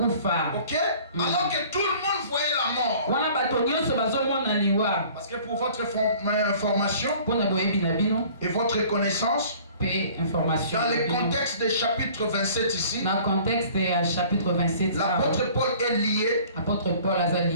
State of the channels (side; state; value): both; inverted; correlation -0.50